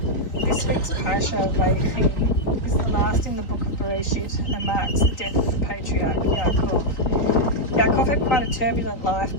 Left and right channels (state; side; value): late; right; 3.9 ms